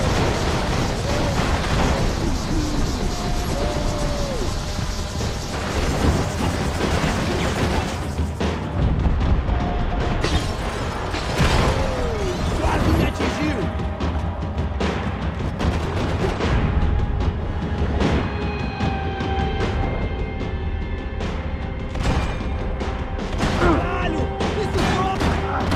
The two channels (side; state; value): both; identical; correlation 1.00